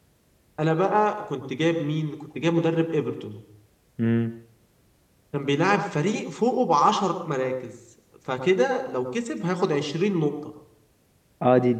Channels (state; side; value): identical; both; correlation 1.00